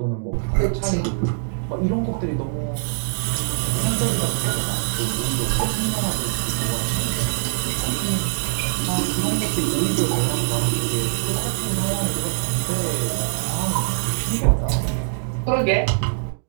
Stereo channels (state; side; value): silent; left; digital silence